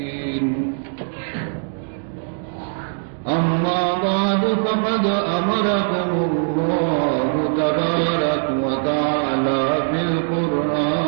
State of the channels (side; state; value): left; silent; 63 dB below the other